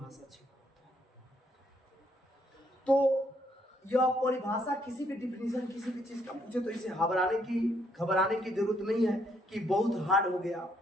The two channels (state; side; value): normal; both; correlation 0.71